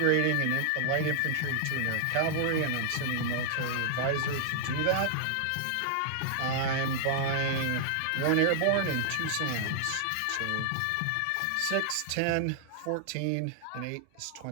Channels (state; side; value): different; both; correlation -0.01